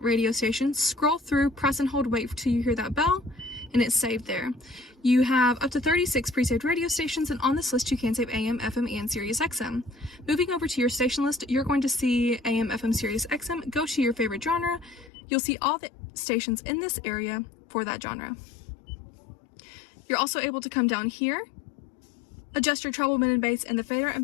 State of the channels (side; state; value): right; drops out; at 15.1 s